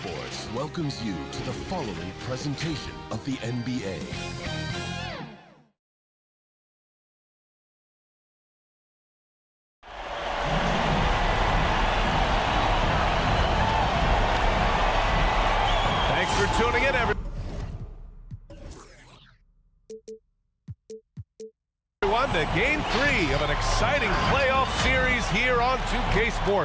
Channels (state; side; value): identical; both; correlation 1.00